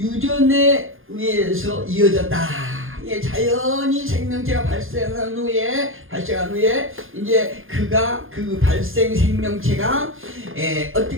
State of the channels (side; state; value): left; late; 0.60 ms